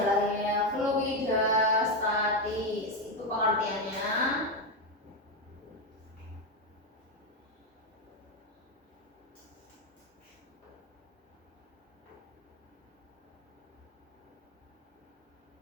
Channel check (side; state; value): both; normal; correlation 0.09